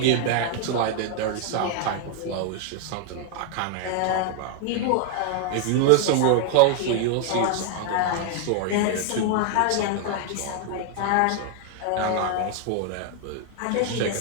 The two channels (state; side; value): different; both; correlation 0.00